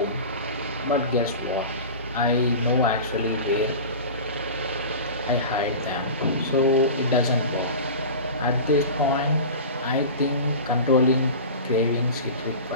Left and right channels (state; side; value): inverted; both; correlation -0.33